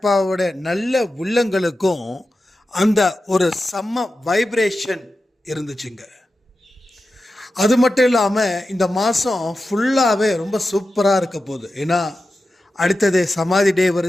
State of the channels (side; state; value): both; normal; correlation 0.92